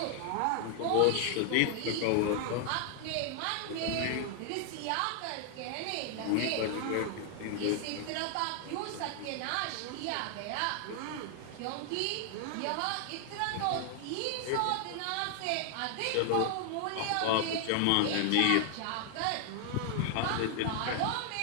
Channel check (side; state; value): both; different; correlation 0.00